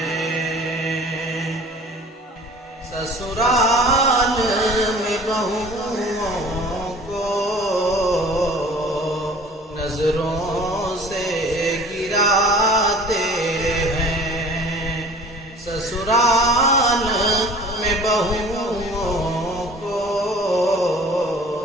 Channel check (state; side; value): normal; both; correlation 0.46